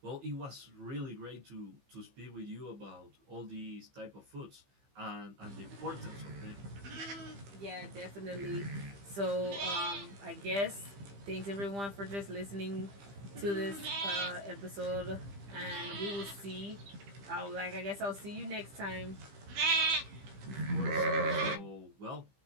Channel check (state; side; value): late; left; 15 ms